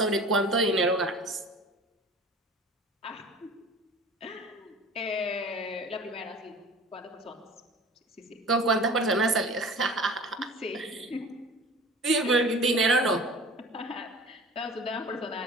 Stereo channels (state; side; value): normal; both; correlation 0.42